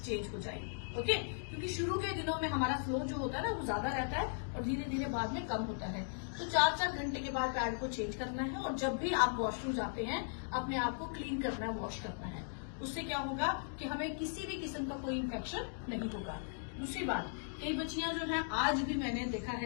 चेंज हो जाए। ओके, क्योंकि शुरू के दिनों में हमारा फ्लो जो होता है ना वो ज्यादा रहता है और धीरे धीरे बाद में कम होता है। तो 4-4 घंटे के बाद पैड को चेंज करना है, और जब भी आप वॉशरूम जाते हैं अपने आप को क्लीन करना है, वॉश करना है। उससे क्या होगा कि हमें किसी भी किस्म का कोई इन्फेक्शन नहीं होगा। दूसरी बात, कई बच्चियां जो है, आज भी मैंने देखा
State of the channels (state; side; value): silent; right; digital silence